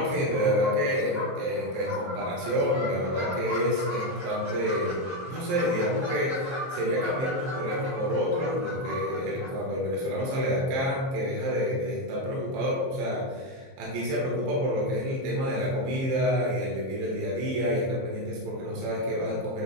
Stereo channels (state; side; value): late; left; 23 ms